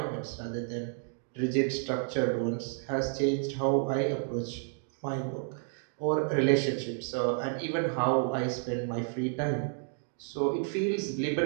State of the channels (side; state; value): left; silent; 57 dB below the other